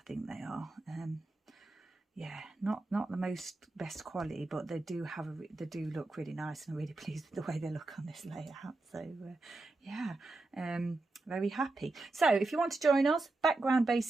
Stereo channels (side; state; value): left; quieter; 3.1 dB